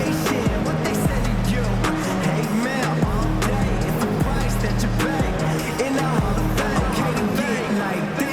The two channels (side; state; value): both; identical; correlation 1.00